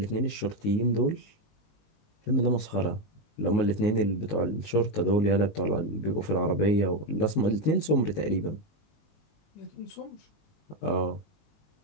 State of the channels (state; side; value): late; right; 19 ms